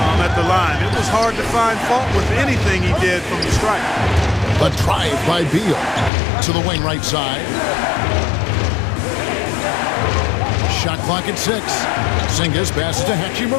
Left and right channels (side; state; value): right; drops out; at 6.1 s